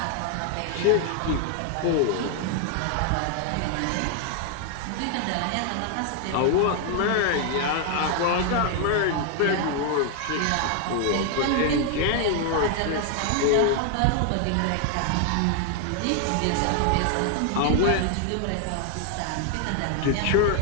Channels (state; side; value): different; both; correlation 0.00